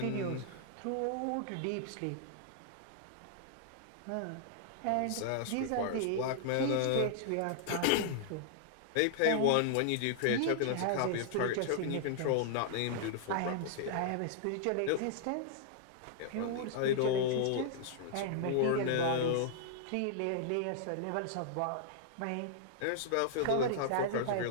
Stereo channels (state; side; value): different; both; correlation -0.01